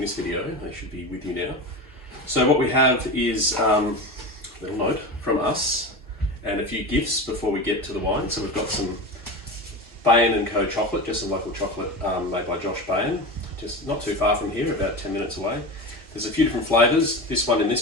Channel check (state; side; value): normal; both; correlation 0.25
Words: video, they should be with you now. So what we have is a little note from us and a few gifts before we get to the wine. So we've got some Bain & Co chocolate, just some local chocolate made by Josh Bain, just not too far from here, about 10 minutes away. There's a few different flavours. This one in